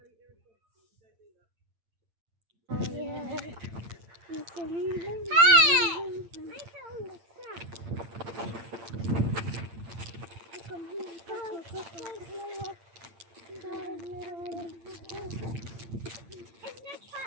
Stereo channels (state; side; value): late; left; 8.8 ms